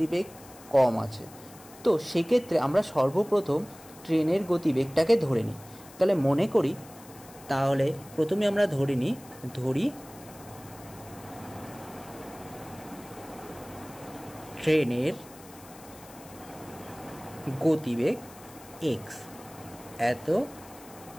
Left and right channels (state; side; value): noise; left; hiss, 21 dB below the sound